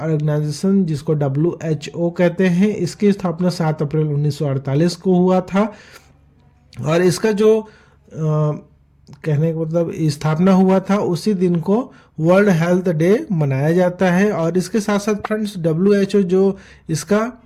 जिसको WHO कहते हैं, इसकी स्थापना 7 अप्रैल 1948 को हुआ था. और इसका जो कहने का मतलब स्थापना हुआ था उसी दिन को वर्ल्ड हेल्थ डे मनाया जाता है. और इसके साथ साथ फ्रेंड्स WHO जो इसका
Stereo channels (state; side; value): identical; both; correlation 1.00